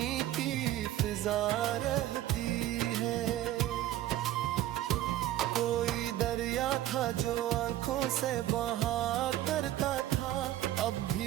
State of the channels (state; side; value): quieter; left; 13.7 dB